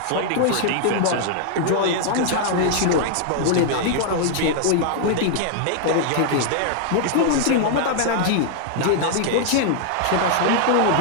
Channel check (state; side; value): different; both; correlation 0.00